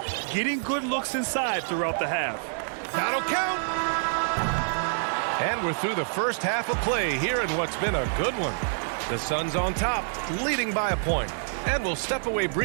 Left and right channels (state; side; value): silent; left; digital silence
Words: getting good looks inside throughout the half. That'll count. And we're through the first half of play here in what's been a good one. The Suns on top, leading by a point. And we'll step away